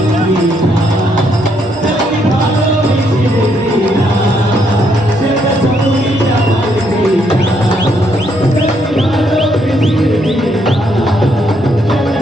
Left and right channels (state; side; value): normal; both; correlation 0.73